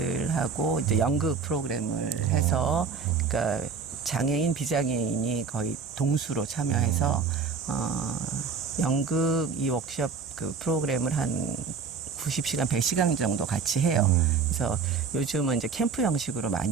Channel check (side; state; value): left; quieter; 5.5 dB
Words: 이제 연극 프로그램을 해서, 그러니까 장애인, 비장애인이 거의 동수로 참여해서 연극 이 워크숍 그 프로그램을 한 90시간, 100시간 정도 같이 해요. 그래서 요즘은 이제 캠프 형식으로